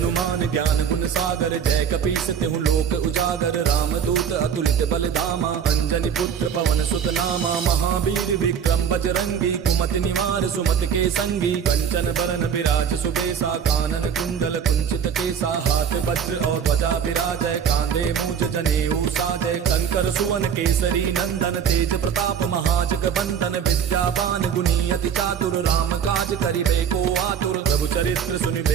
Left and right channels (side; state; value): left; quieter; 7.7 dB